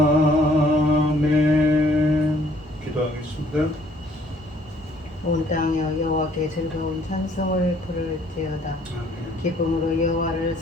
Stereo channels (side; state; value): both; normal; correlation 0.62